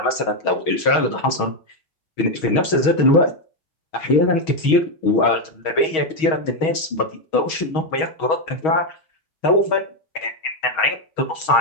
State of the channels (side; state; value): right; late; 6.3 ms